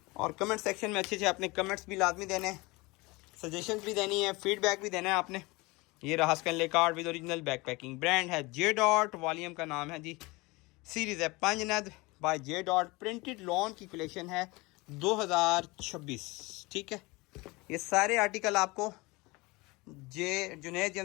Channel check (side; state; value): right; quieter; 23.9 dB